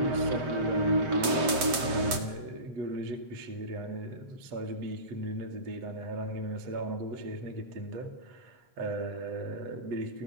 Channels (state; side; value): late; left; 7.7 ms